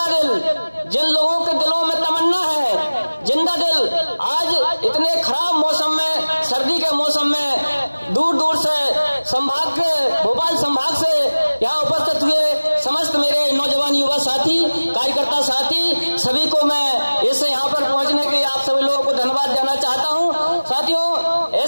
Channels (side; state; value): both; inverted; correlation -1.00